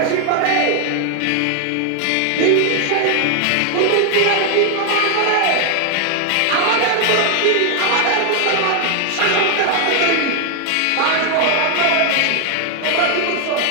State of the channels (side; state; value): both; different; correlation 0.00